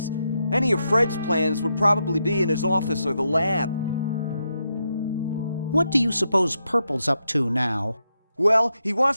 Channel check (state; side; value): inverted; both; correlation -0.83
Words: Any of Fred's plans would probably be in his office or the lab. What do you suppose Purple's up to now? Well, he